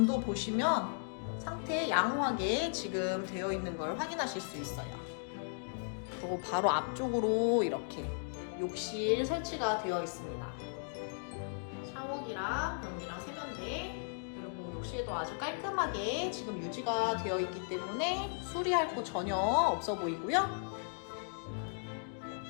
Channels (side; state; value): right; silent; digital silence